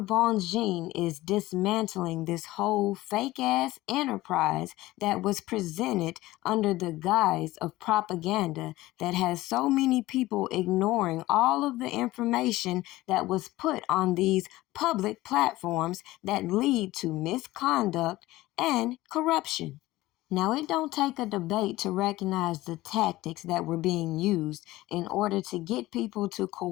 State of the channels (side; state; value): right; quieter; 17.7 dB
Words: Bonjean is dismantling this whole fake-ass enterprise that was presented under the guise of propaganda that has so many people ignoring all of the information that was put on these public platforms that lead to misconduct and corruption. Now, it don't take a debate to recognize the tactics that were being used in order to get people to